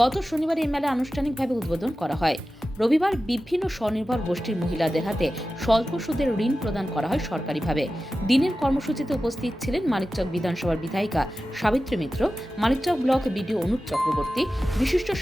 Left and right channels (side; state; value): both; normal; correlation 0.94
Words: গত শনিবার এই মেলা আনুষ্ঠানিকভাবে উদ্বোধন করা হয়। রবিবার বিভিন্ন স্বনির্ভর গোষ্ঠীর মহিলাদের হাতে স্বল্প সুদের ঋণ প্রদান করা হয় সরকারিভাবে। দিনের কর্মসূচিতে উপস্থিত ছিলেন মানিকচক বিধানসভার বিধায়িকা সাবিত্রী মিত্র, মানিকচক ব্লক বিডিও অনুপ চক্রবর্তী, বিশিষ্ট